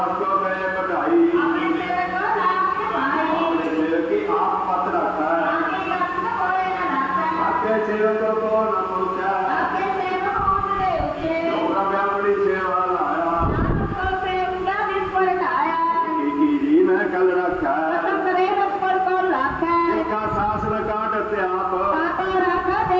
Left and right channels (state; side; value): identical; both; correlation 1.00